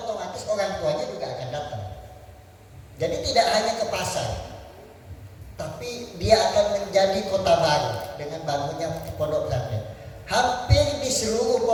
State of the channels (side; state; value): both; identical; correlation 1.00